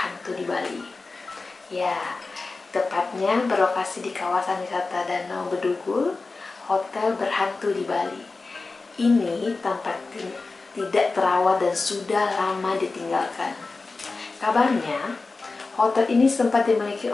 di Bali. Ya, tepatnya berlokasi di kawasan wisata Danau Bedugul, hotel berhantu di Bali. Ini tampak tidak terawat dan sudah lama ditinggalkan. Kabarnya, hotel ini sempat dimiliki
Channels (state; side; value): quieter; right; 3.8 dB